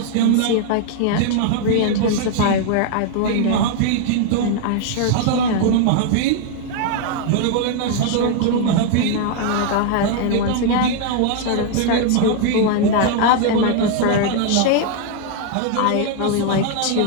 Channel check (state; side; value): different; both; correlation 0.00